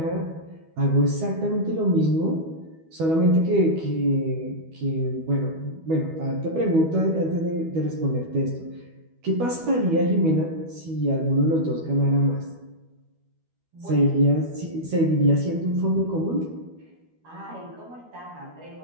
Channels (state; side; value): late; left; 12 ms